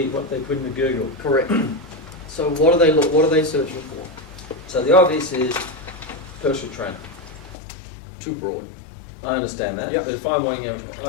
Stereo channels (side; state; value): right; drops out; at 7.6 s